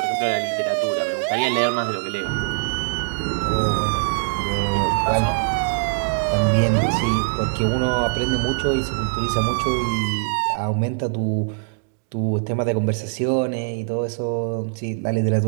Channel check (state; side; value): silent; left; digital silence